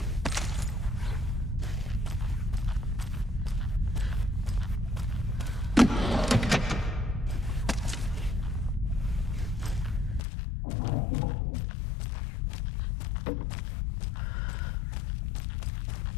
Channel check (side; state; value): right; drops out; at 10.2 s